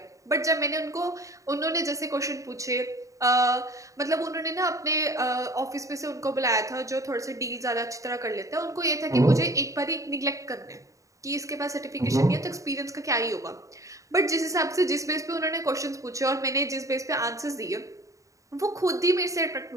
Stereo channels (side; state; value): left; late; 0.16 ms